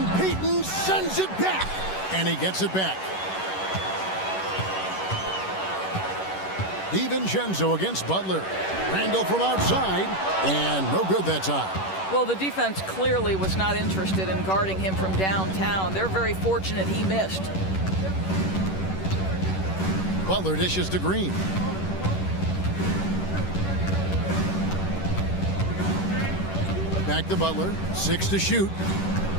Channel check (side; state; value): right; late; 11 ms